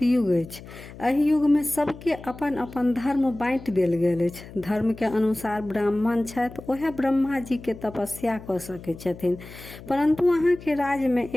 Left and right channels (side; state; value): left; noise; hum, 16 dB below the sound